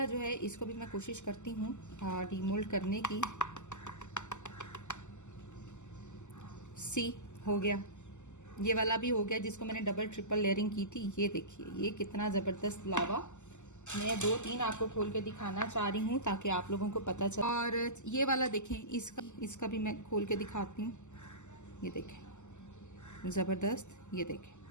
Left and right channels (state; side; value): late; right; 0.84 ms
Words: जो है इसको भी मैं कोशिश करती हूँ डीमोल्ड करने की। सी हो गया, ये वाला भी हो गया जिसको मैंने डबल ट्रिपल लेयरिंग की थी। ये देखिए ये कितना ज़बरदस्त लावा। मैं 2-3 आपको खोल के दिखाना चाह रही हूँ ताकि आप लोगों को पता चले। और ये वाला देखें, इसका भी मैं खोल के दिखाती हूँ। ये देखें ज़बरदस्त, ये देखें।